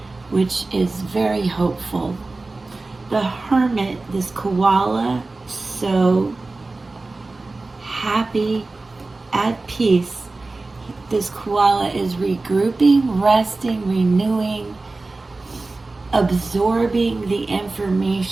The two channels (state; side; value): quieter; left; 3.4 dB